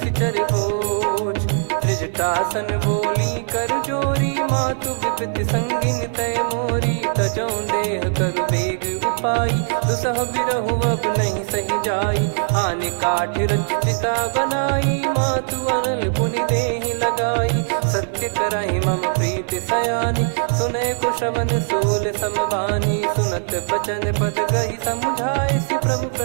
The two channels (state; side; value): silent; left; digital silence